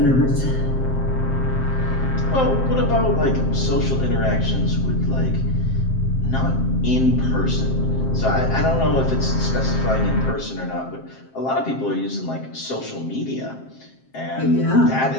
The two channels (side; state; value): right; late; 7.6 ms